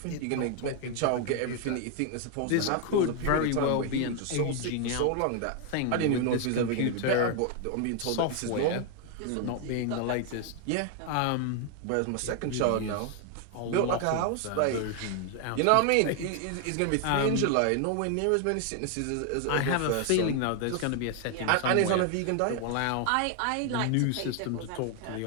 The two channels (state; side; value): different; both; correlation 0.00